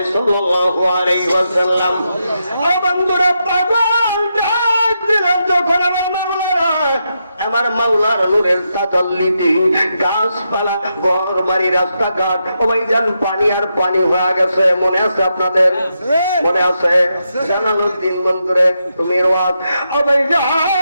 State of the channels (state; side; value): inverted; both; correlation -0.84